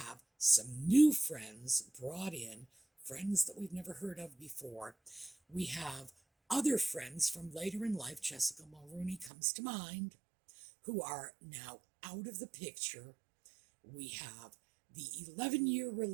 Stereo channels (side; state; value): left; drops out; at 9.3 s